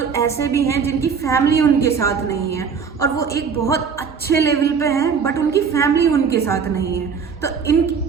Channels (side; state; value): left; quieter; 6.1 dB